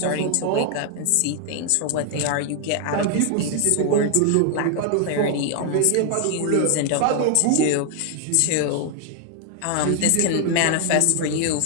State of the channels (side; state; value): both; different; correlation 0.00